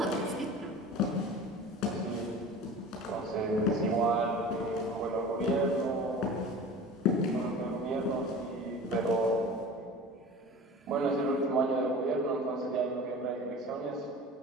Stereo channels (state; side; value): normal; both; correlation 0.38